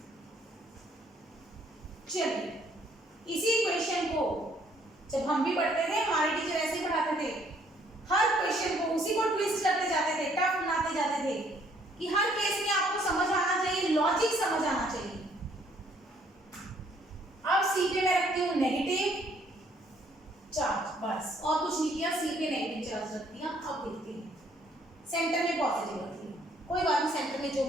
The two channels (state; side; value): normal; both; correlation 0.65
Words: चलिए इसी क्वेश्चन को जब हम भी पढ़ते थे, हमारे टीचर ऐसे ही पढ़ाते थे, हर क्वेश्चन को उसी को ट्विस्ट करते जाते थे, टफ बनाते जाते थे, कि हर केस में आपको समझ आना चाहिए, लॉजिक समझ आना चाहिए। अब सी पे और सी पे नेगेटिव चार्ज रख दिया। अब देखते हैं, सेंटर में पॉजिटिव रख दिया, कोई बात नहीं, सेंटर में जो